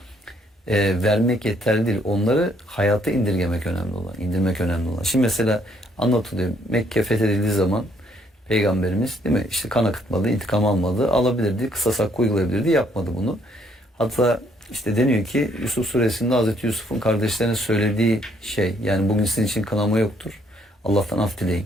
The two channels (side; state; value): both; normal; correlation 0.68